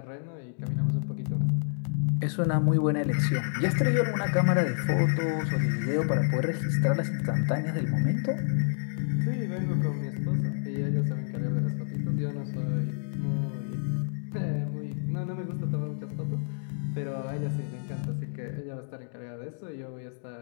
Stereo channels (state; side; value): silent; right; digital silence